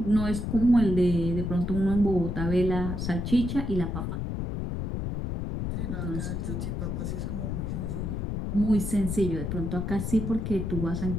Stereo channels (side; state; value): left; noise; rumble, 3 dB below the sound